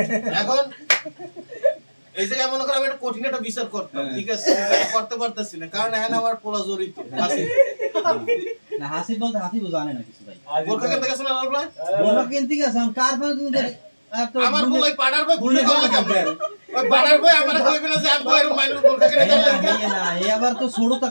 এখন এই জায়গায় মনে করো আমি একটা কঠিন একটা বিচার করতাম ঠিক আছে করতে পারতেছি না কারণ এখানে আমার পোলা জড়িত আছে না হাসিব বলতে হাসিব জানে না কিছু ভাই বোরখা কিনতে গেছো না লালবা বলা কেন ঠিক আছে কার ফোন তুমি আমার বলাই পাড়ার ভাই ভুলে করলে কেমন ওই পাড়ার ভাই আমার কইবে না যে আমি এর মাইনুর বোরখা কিনে দিলাম না এই আবার তো ছোটটা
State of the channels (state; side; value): inverted; both; correlation -1.00